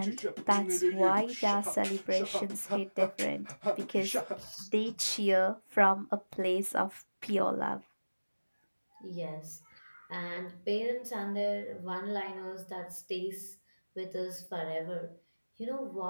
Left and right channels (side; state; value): both; inverted; correlation -1.00